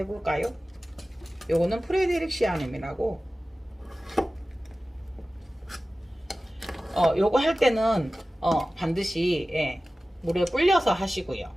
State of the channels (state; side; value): normal; both; correlation 0.96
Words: 요거는 프레데릭 시아넴이라고, 요거 할 때는 반드시, 예, 물에 불려서 하시고요.